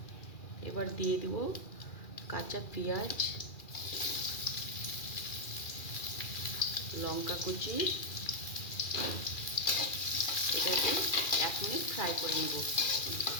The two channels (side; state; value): right; late; 2.4 ms